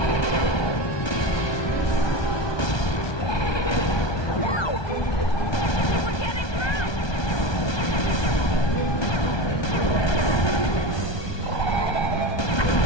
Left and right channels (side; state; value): right; late; 1.2 ms